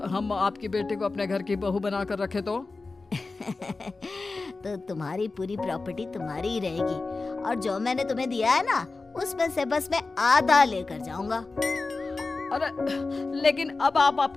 हम आपकी बेटी को अपने घर की बहू बनाकर रखे तो? तो तुम्हारी पूरी प्रॉपर्टी तुम्हारी ही रहेगी, और जो मैंने तुम्हें दिया है ना, उसमें से बस मैं आधा लेकर जाऊंगा। अरे लेकिन अब आप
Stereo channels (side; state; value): right; quieter; 3.7 dB